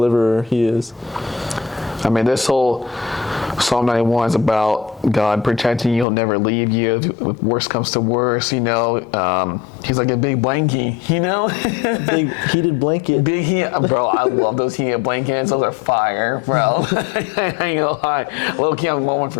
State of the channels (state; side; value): drops out; right; at 6.1 s